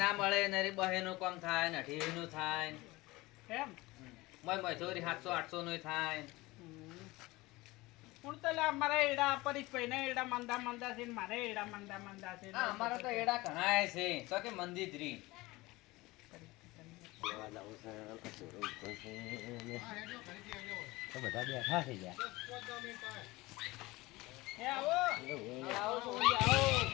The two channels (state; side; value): quieter; right; 20.8 dB